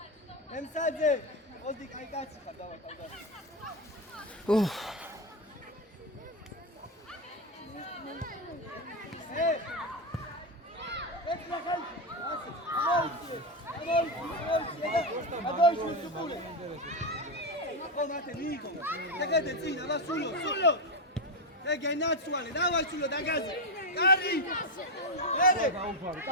ემსაძე ოდი კაი კაცი ხარ დავათავდა ეს ნახალ ასე ამოიწე სუპულე Pomate Nico, te zina, va sullo. Te che nazionale, dai sullo da casa. Cari! Bene!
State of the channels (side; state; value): both; normal; correlation 0.08